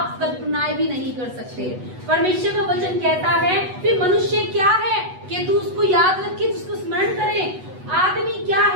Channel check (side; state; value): left; late; 8.1 ms